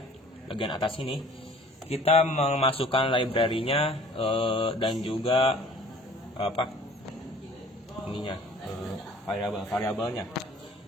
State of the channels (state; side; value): normal; both; correlation 0.50